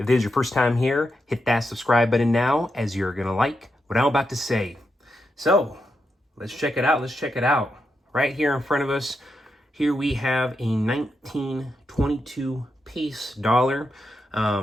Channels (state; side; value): normal; both; correlation 0.85